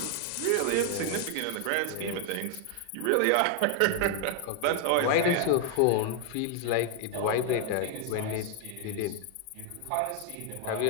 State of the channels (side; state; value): both; different; correlation 0.00